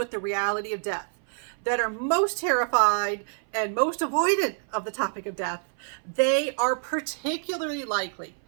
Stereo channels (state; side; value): silent; left; 60 dB below the other